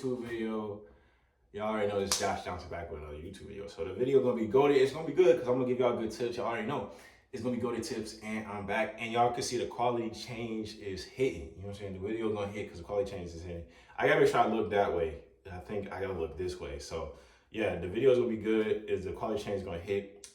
video. Y'all already know this Josh Johnson back with another YouTube video. So the video gonna be goated. It's gonna be good because I'm gonna give y'all good tips. Y'all already know it's gonna be goated tips, and I'm back. And y'all can see the quality change is hitting. You know what I'm saying? The video gonna hit because the quality change is hitting. I gotta make sure I look that way. I think I gotta look this way. So yeah, the video is gonna be good. Is the quality change gonna hit?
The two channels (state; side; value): identical; both; correlation 1.00